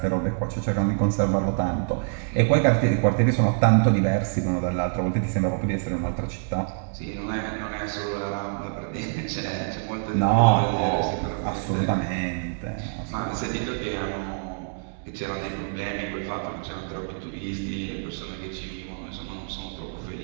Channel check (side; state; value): left; silent; digital silence